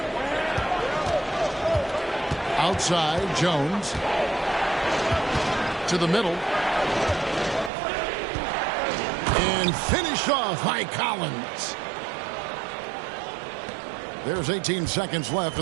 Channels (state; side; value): drops out; left; at 7.7 s